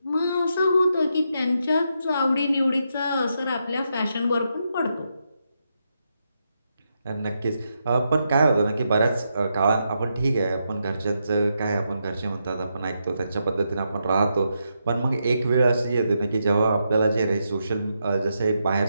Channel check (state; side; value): inverted; both; correlation -0.83